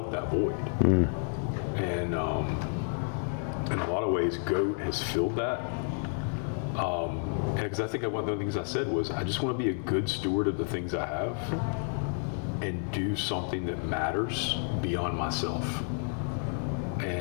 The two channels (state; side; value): silent; right; 57 dB below the other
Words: that void. And in a lot of ways, GOAT has filled that. Because I think one of the things I said was, I just want to be a good steward of the things I have and do something that matters beyond myself.